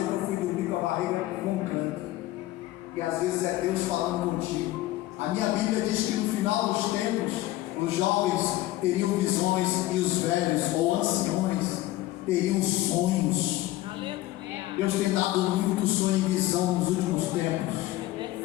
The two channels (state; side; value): quieter; right; 16.4 dB